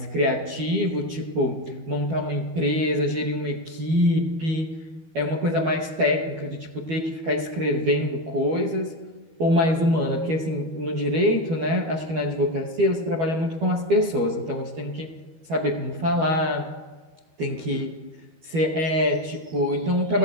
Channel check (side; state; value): left; late; 12 ms